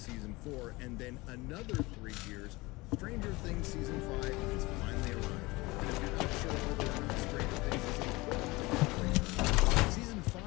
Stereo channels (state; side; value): quieter; right; 22.4 dB